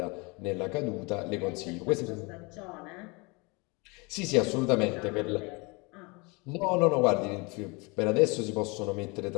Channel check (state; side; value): quieter; right; 28.0 dB